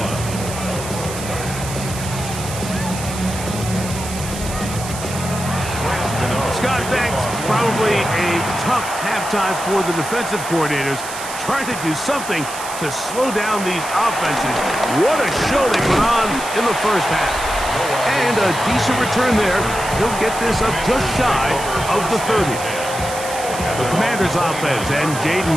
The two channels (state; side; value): noise; right; hiss, 10 dB below the sound